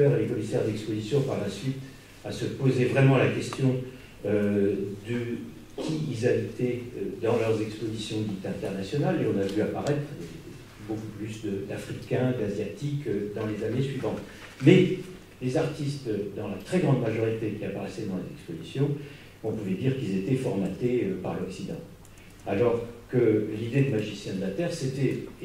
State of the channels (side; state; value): both; identical; correlation 1.00